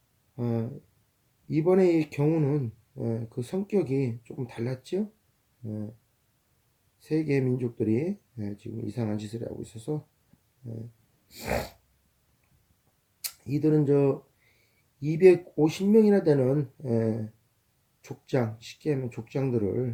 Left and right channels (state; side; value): identical; both; correlation 1.00